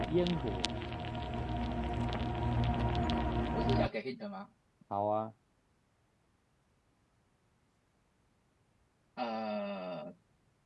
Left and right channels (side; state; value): both; identical; correlation 1.00